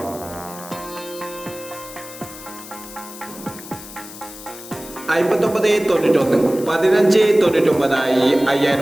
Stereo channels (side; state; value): left; noise; hiss, 15 dB below the sound